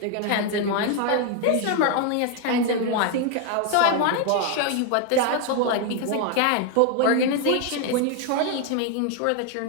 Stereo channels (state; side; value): different; both; correlation 0.01